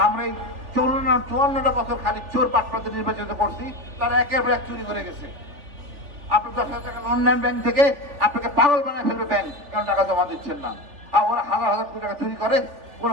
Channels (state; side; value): late; left; 3.4 ms